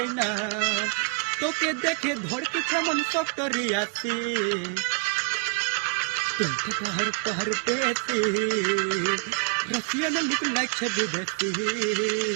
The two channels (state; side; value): quieter; left; 34.8 dB